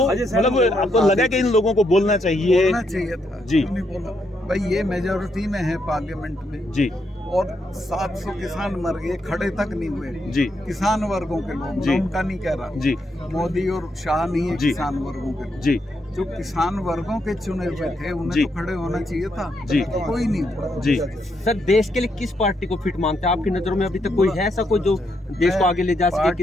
मतलब आपको लगा कि इन लोगों को बोलना चाहिए था जी? नहीं बोला भाई, ये मेजोरिटी में है पार्लियामेंट में जी, और 700 किसान मर गए, खड़े तक नहीं हुए जी। किसान वर्गों के लोग, जी। मैं उनका नहीं कह रहा जी, मोदी और शाह नहीं है, जी। किसान वर्गों के लोग। जी, जो किसान वर्गों के चुने हुए थे उन्हें जी। तो खड़े होना चाहिए था, जी। कोई नहीं हुआ। जी। सर, देश के लिए किस पार्टी को फिट मानते हैं? आपकी नजरों में अभी तक कोई है ऐसा कोई जो देश को आगे ले जा सके, पार्टी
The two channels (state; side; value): normal; both; correlation 0.78